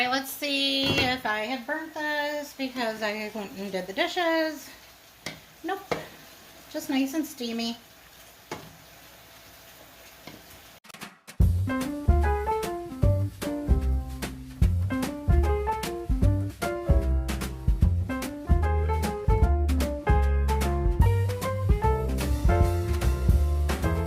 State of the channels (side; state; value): both; identical; correlation 1.00